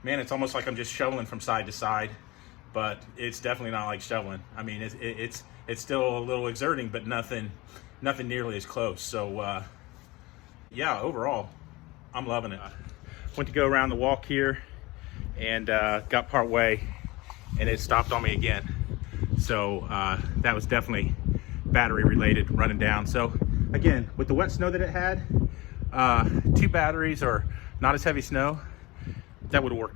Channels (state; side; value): quieter; right; 21.7 dB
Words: man, it's almost like I'm just shoveling from side to side, but it's definitely not like shoveling. I mean, it's still a little exerting, but nothing nearly as close. So yeah, overall, I'm loving it. Went to go around the walk here and got part way, and it stopped on me again. So that was definitely battery related, running down. So again, with the wet snow that it had, 2 batteries or not as heavy snow, that would have